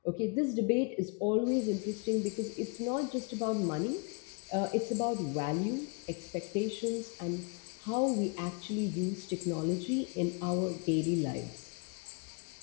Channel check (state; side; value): quieter; right; 34.7 dB